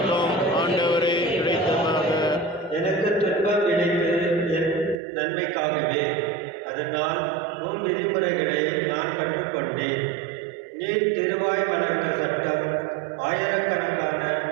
ஆண்டவரே கிடைத்ததாக. எனக்கு துன்பம் விளைத்து என் நன்மைக்காகவே. அதனால் உம் விதிமுறைகளை நான் கற்றுக்கொண்டேன். நீர் திருவாய் வளர்த்த சட்டம் ஆயிரக்கணக்கான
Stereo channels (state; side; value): drops out; left; at 5.0 s